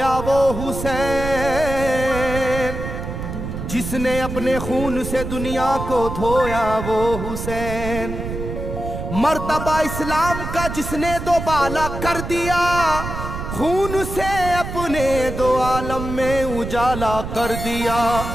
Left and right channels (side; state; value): right; noise; rumble, 6 dB below the sound